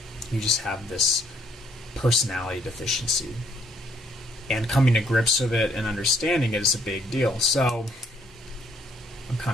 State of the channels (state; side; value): normal; both; correlation 0.67